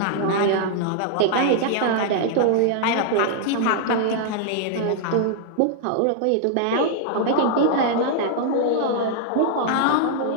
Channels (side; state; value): both; different; correlation -0.01